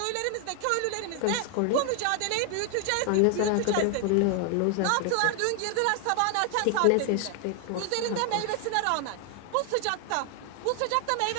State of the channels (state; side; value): different; both; correlation 0.00